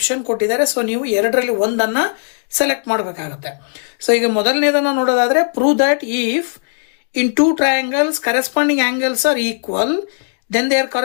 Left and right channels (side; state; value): right; silent; digital silence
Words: ಕೊಟ್ಟಿದ್ದಾರೆ. ಸೊ ನೀವು 2ರಲ್ಲಿ ಒಂದನ್ನ ಸೆಲೆಕ್ಟ್ ಮಾಡಬೇಕಾಗತ್ತೆ. ಸೊ ಈಗ ಮೊದಲನೇದನ್ನ ನೋಡೋದಾದ್ರೆ, prove that if in two triangles corresponding angles are equal, then their